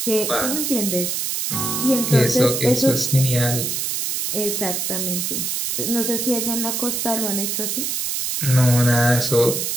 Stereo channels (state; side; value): noise; right; hiss, 1 dB below the sound